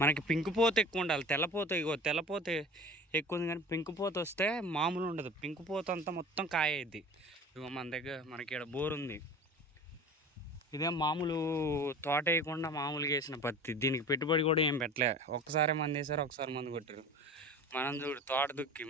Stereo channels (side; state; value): both; normal; correlation 0.38